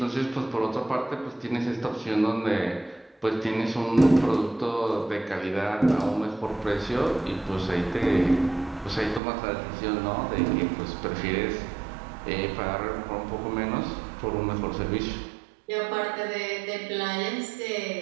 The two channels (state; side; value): drops out; left; at 9.2 s